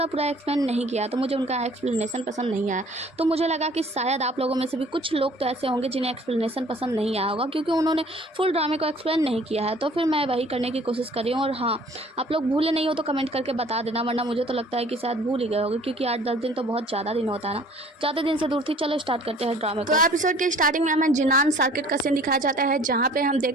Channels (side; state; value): both; normal; correlation 0.53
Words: एक्सप्लेन नहीं किया, तो मुझे उनका एक्सप्लेनेशन पसंद नहीं आया। तो मुझे लगा कि शायद आप लोगों में से भी कुछ लोग तो ऐसे होंगे जिन्हें एक्सप्लेनेशन पसंद नहीं आया होगा, क्योंकि उन्होंने फुल ड्रामे को एक्सप्लेन नहीं किया है। तो फिर मैं वही करने की कोशिश कर रही हूँ। और हाँ, आप लोग भूले नहीं हो तो कमेंट करके बता देना, वरना मुझे तो लगता है कि शायद भूल ही गए होंगे, क्योंकि 8-10 दिन तो बहुत ज़्यादा दिन होता है ना, ज़्यादा दिन से दूर थी। चलो स्टार्ट करते हैं ड्रामे को। तो एपिसोड के स्टार्टिंग में हमें जिनान सर्किट का सीन दिखाया जाता है, जहाँ पे हम